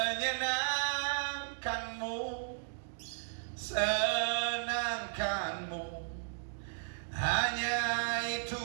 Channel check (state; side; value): silent; left; digital silence